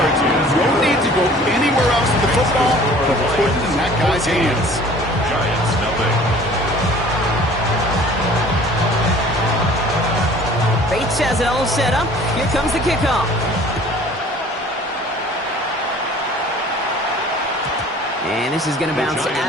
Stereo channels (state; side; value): normal; both; correlation 0.49